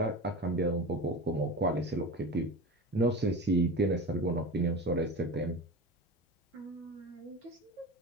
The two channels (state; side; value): normal; both; correlation 0.29